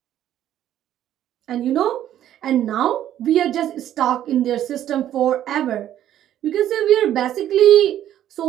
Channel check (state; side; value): quieter; left; 11.6 dB